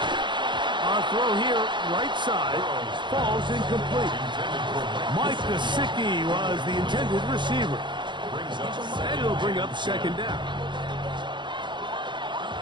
Our throw here, right side, falls incomplete. Mike Gesicki was the intended receiver. And it'll bring up 2nd down.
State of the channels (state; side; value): late; left; 0.23 ms